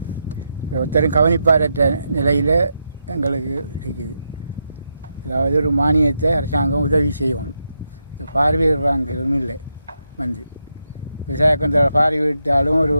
ஒருத்தரும் கவனிப்பாரற்ற நிலையில் எங்களுக்கு இருக்குது. அதாவது ஒரு மானியத்தை அரசாங்கம் உதவி செய்யணும். இந்த பார்வையிடுறாங்கிறதும் இல்லை. வந்து விவசாயத்தில் பார்வையிட்டாலும் ஒரு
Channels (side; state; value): both; inverted; correlation -0.84